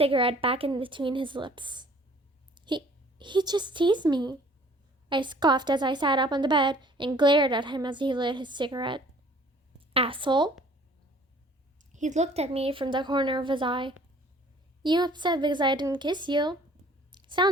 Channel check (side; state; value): both; normal; correlation 0.54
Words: back in between his lips. He just teased me. I scoffed as I sat up on the bed and glared at him as he lit his cigarette. Asshole. He looked at me from the corner of his eye. You upset because I didn't kiss you?